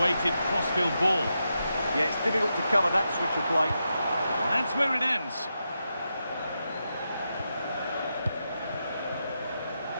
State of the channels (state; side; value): inverted; both; correlation -0.86